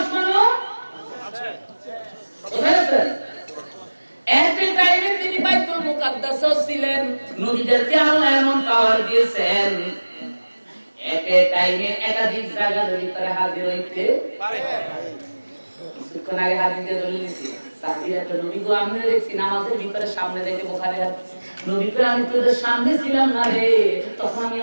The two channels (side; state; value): both; inverted; correlation -1.00